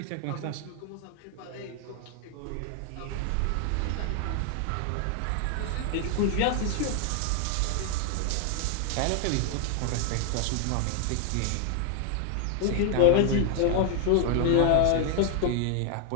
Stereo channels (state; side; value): different; both; correlation 0.00